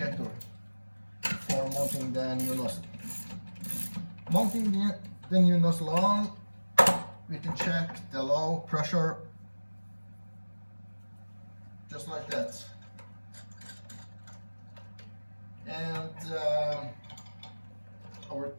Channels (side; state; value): both; inverted; correlation -1.00